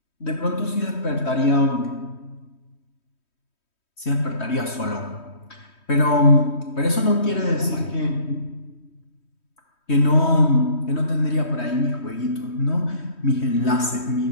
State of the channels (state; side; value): late; right; 3.1 ms